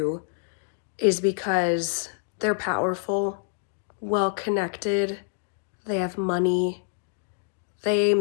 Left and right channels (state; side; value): silent; right; digital silence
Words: is because they're powerful, well-connected, they have money, they